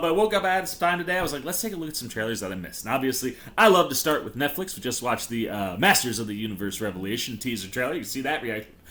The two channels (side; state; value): both; identical; correlation 1.00